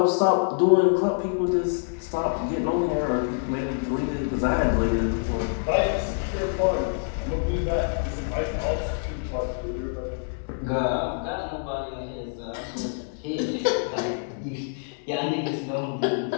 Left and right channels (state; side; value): silent; right; 61 dB below the other